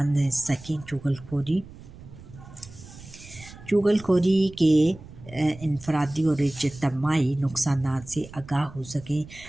सकें। चुगलखोरी के इनफरादी और इज्तिमाई नुकसानात से आगाह हो सकें,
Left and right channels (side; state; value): right; noise; rumble, 18 dB below the sound